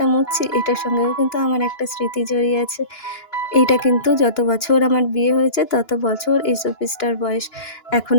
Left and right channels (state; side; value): late; right; 2.9 ms